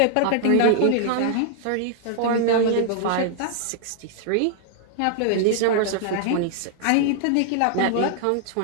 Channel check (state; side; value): different; both; correlation 0.00